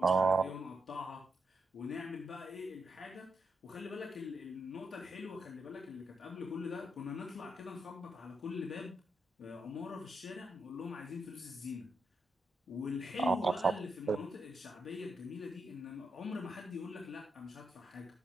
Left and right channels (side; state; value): both; normal; correlation 0.83